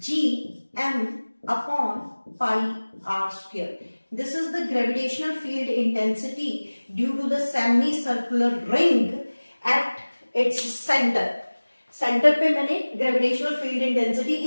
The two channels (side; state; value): both; inverted; correlation -1.00